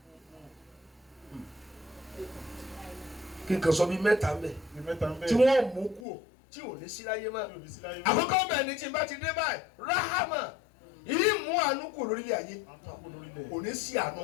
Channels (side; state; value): right; drops out; at 6.0 s